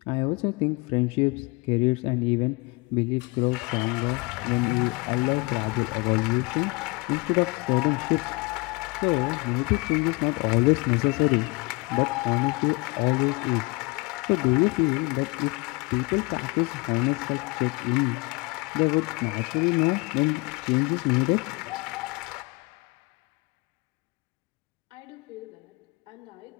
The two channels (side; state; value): right; quieter; 26.3 dB